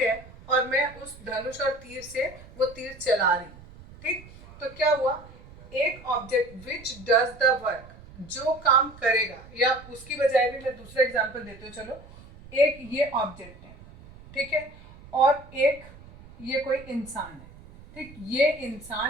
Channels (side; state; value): right; noise; rumble, 20 dB below the sound